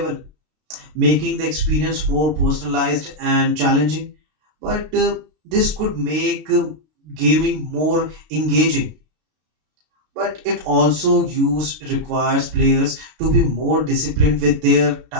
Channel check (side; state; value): left; late; 32 ms